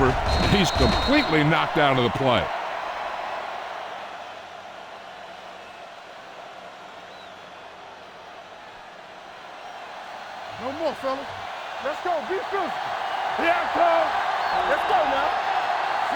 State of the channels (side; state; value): both; identical; correlation 1.00